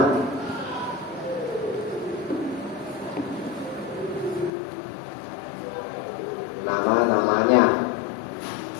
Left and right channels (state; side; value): drops out; right; at 4.5 s